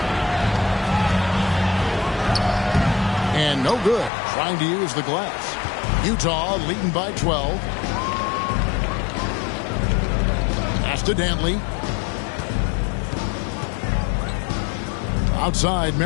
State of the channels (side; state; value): right; drops out; at 4.1 s